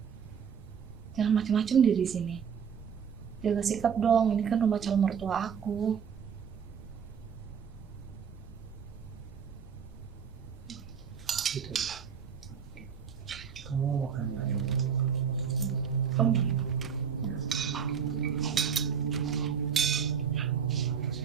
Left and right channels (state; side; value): quieter; left; 7.3 dB